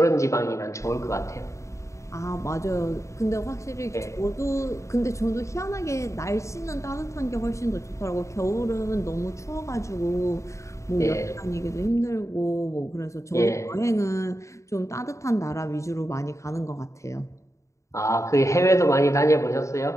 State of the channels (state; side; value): late; right; 0.14 ms